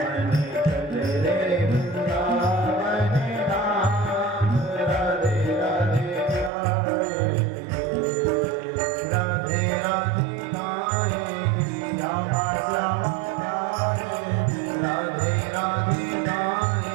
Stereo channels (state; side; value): drops out; left; at 6.5 s